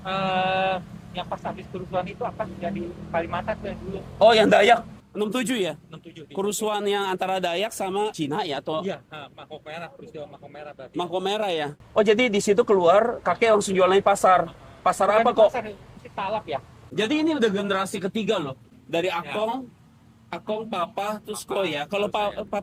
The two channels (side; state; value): both; identical; correlation 1.00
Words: Yang pas habis kerusuhan itu akan jadi Kalimantan tuh yang dulu. Oh yang Dayak? 67 ya? 67. Kerusuhan yang antara Dayak sama Cina ya? Atau Iya, Mako Merah, peristiwa Mako Merah berarti. Mako Merah ya? Oh jadi di situ keluar kakek langsung jualan di pasar. Pasar apa kok? Pasar si Talap ya. Jadi ini udah generasi ketiga loh. Dari Akong, Papa, terus kok ya. Kalau